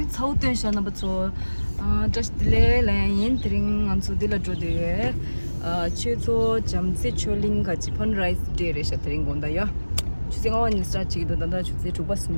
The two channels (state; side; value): inverted; both; correlation -1.00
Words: 차우된 샤나 버초. just delay line 드링 안수 딜라 조데. 최소 잠시 촐링 같이 fundraise 데레샤 드링 건다요. 주생원 인스타 치기도 단다 주세